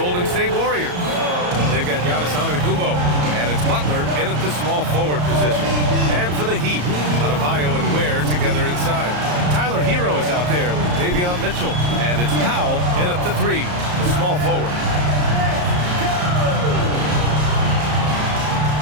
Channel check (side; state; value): left; late; 34 ms